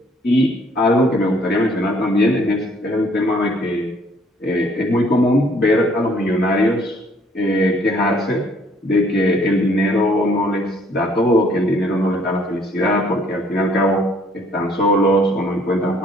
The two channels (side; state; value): both; normal; correlation 0.62